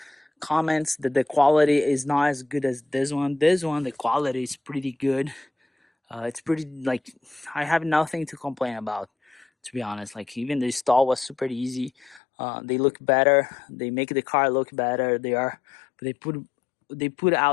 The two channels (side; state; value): right; drops out; at 12.2 s